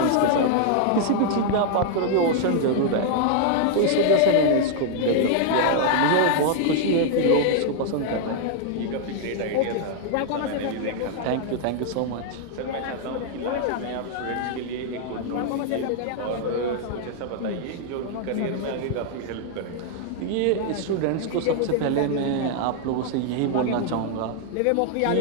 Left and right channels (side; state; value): both; different; correlation 0.00